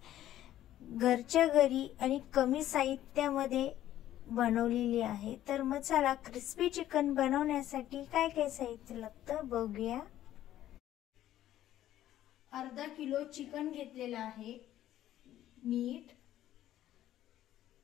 घरच्या घरी आणि कमी साहित्यामध्ये बनवलेली आहे। तर मग चला क्रिस्पी चिकन बनवण्यासाठी काय काय साहित्य लागतं बघूया। अर्धा किलो चिकन घेतलेला आहे, मीठ,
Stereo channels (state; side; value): quieter; right; 12.9 dB